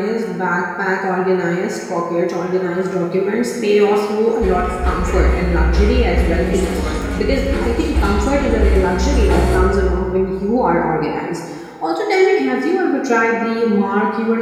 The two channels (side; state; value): both; identical; correlation 1.00